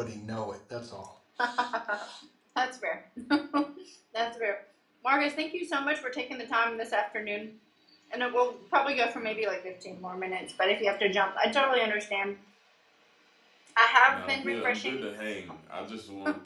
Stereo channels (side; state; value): both; identical; correlation 1.00